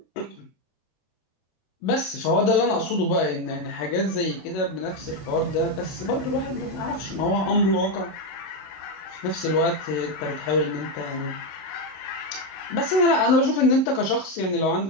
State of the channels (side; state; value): right; late; 27 ms